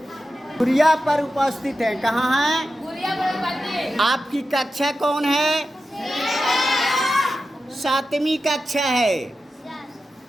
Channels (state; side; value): normal; both; correlation 0.92